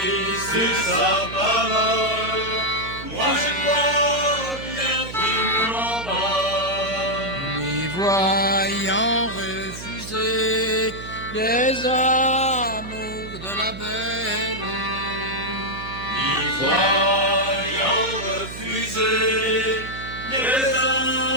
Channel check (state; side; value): noise; right; hum, 12 dB below the sound